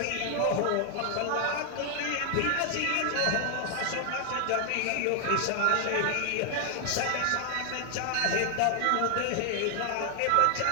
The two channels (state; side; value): different; both; correlation 0.00